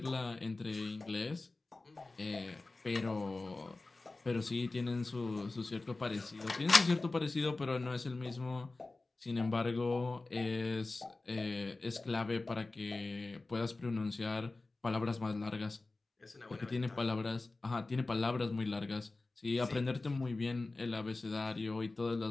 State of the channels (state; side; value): quieter; right; 3.3 dB